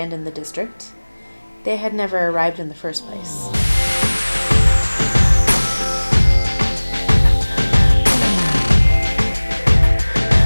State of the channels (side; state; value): both; inverted; correlation -1.00